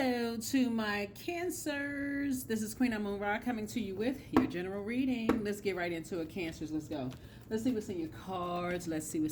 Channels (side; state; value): both; identical; correlation 1.00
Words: to my Cancers. This is Queen Amun Ra coming to you with your general reading. Let's get right into it, Cancers. Let's go. Let's see what's in your cards. Let's see